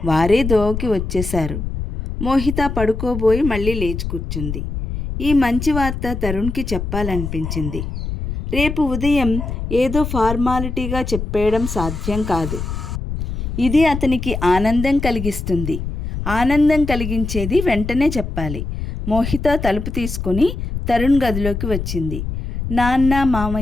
వారే దోవకి వచ్చేశారు. మోహిత పడుకోబోయి మళ్ళీ లేచి కూర్చుంది. ఈ మంచి వార్త తరుణ్కి చెప్పాలనిపించింది. రేపు ఉదయం ఏదో ఫార్మాలిటీగా చెప్పేయడం సాధ్యం కాదు. ఇది అతనికి ఆనందం కలిగిస్తుంది. ఆనందం కలిగించేది వెంటనే చెప్పాలి. మోహిత తలుపు తీసుకుని తరుణ్ గదిలోకి వచ్చింది. నాన్న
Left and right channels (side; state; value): left; noise; rumble, 5 dB below the sound